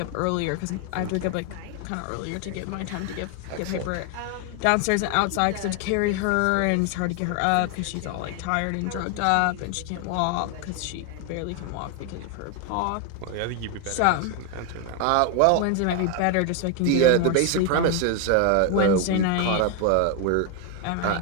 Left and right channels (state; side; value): different; both; correlation 0.01